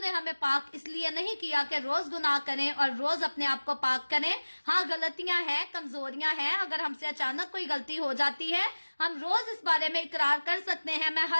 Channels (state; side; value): inverted; both; correlation -1.00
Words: हमें पाक इसलिए नहीं किया कि रोज गुनाह करें और रोज अपने आप को पाक करें। हाँ, गलतियां हैं, कमजोरियां हैं, अगर हमसे अचानक कोई गलती हो जाती है हम रोज इस बारे में इकरार कर सकते हैं। मैं